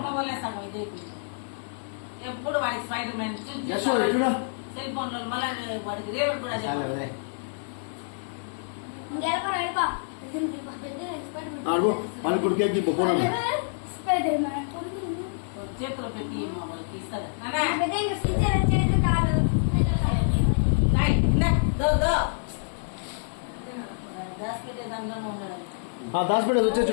వల్లే సగం ఇదే ఎప్పుడు వాడికి స్పైడర్ మ్యాన్ జస్సు చూడు. సెల్ ఫోన్ లో మళ్ళీ వాడికి రేపు కూడా చెప్పాలి. వాళ్ళకి ఇప్పుడు కేక్ ఇప్పు పోనా. చేతిలో పెట్టి వాళ్ళకి ఇస్తారు. దాచిపెట్టే దాంట్లోనే ఉన్నాడు. దాచిపెట్టేది వచ్చే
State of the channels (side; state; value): right; silent; digital silence